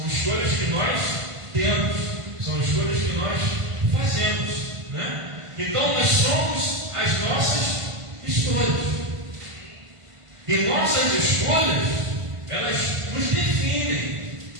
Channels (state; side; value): late; left; 1.5 ms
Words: escolhas que nós temos, são escolhas que nós fazemos, né? Então nós somos as nossas escolhas. E nossas escolhas, elas nos definem.